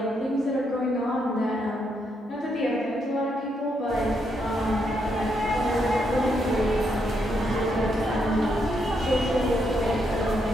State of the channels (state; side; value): normal; both; correlation 0.78